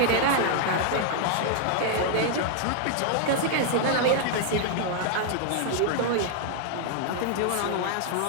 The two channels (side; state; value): both; different; correlation 0.00